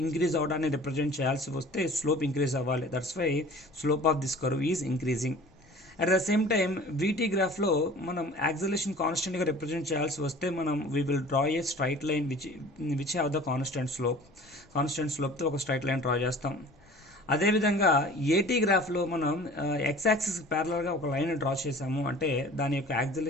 ఇంక్రీజ్ అవడాన్ని రిప్రజెంట్ చేయాల్సి వస్తే స్లోప్ ఇంక్రీజ్ అవ్వాలి. That's why slope of this curve is increasing. At the same time vt గ్రాఫ్లో మనం యాక్సలేషన్ కాన్స్టెంట్గా రిప్రజెంట్ చేయాల్సి వస్తే మనం we will draw a straight line which have the constant స్లోప్తో ఒక స్ట్రైట్ లైన్ డ్రా చేస్తాం. అదేవిధంగా ఏటీ గ్రాఫ్లో మనం ఎక్స్ యాక్సిస్ ప్యారలల్గా ఒక లైన్ డ్రా చేసాము అంటే దాని యొక్క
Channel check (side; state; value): left; noise; rumble, 29 dB below the sound